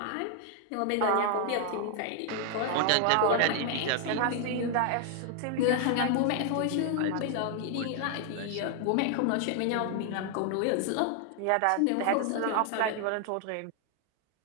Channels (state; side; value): different; both; correlation 0.00